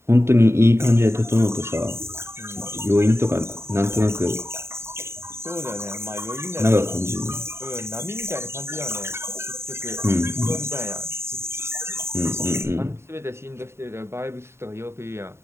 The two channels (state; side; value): late; left; 0.12 ms